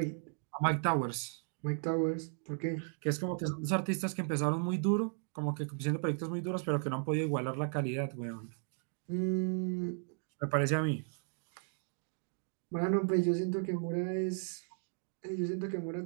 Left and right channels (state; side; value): silent; left; 54 dB below the other